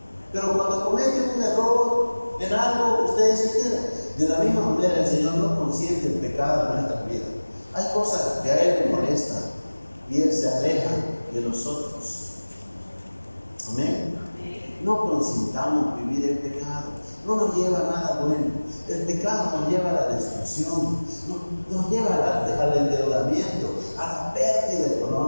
Pero cuando comete un error en algo, ustedes se quedan. De la misma manera, el Señor no consiente el pecado en nuestra vida. Hay cosas que a Él le molestan y Él se aleja de nosotros. Amén. No consintamos vivir el pecado. No nos lleva a nada bueno. El pecado nos lleva a la destrucción, nos lleva al endeudamiento, a la pérdida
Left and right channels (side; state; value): both; inverted; correlation -1.00